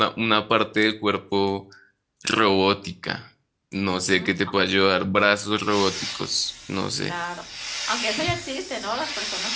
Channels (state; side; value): identical; both; correlation 1.00